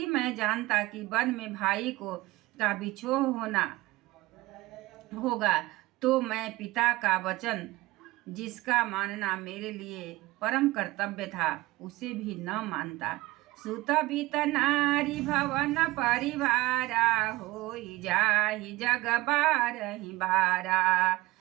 मैं जानता कि वन में भाई का बिछोह होना होगा तो मैं पिता का वचन, जिसका मानना मेरे लिए परम कर्तव्य था, उसे भी न मानता। सुत बीत नारी भवन परिवारा होई जाहि जग बारहि बारा।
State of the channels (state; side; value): quieter; left; 19.8 dB